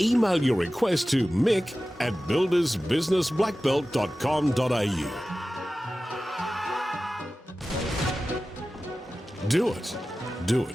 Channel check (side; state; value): both; normal; correlation 0.95